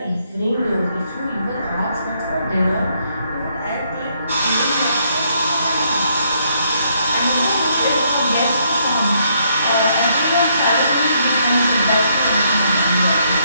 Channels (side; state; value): both; inverted; correlation -0.72